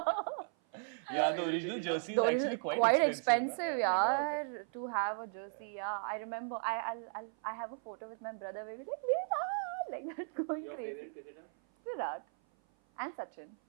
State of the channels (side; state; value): left; silent; 54 dB below the other